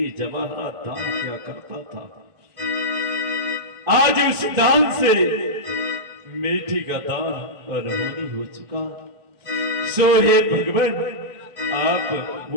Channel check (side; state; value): left; late; 2.0 ms